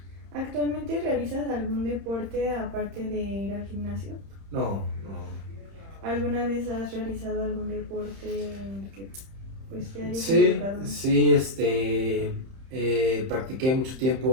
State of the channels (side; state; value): left; late; 31 ms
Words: ¿Actualmente realizas algún deporte aparte de ir al gimnasio? No. ¿Alguna vez has realizado algún deporte en el que pues te hayas Sí, involucrado? sí, practiqué mucho